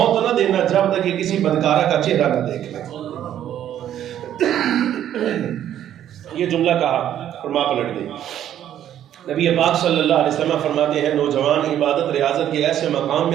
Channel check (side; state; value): left; quieter; 11.0 dB